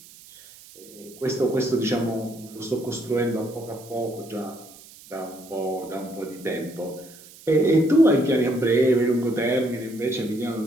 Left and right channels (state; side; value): noise; right; hiss, 21 dB below the sound